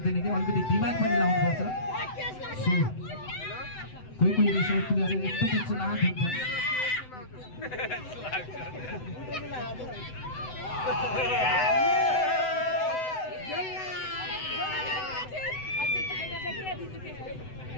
कि अलिकति दिमाग पनि लाउनुपर्छ कोही कोही रेसर प्लेयर एकदमै चलाक हुन्छ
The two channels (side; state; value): right; late; 7.9 ms